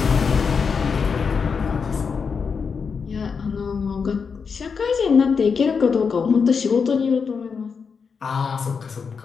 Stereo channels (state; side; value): quieter; right; 5.7 dB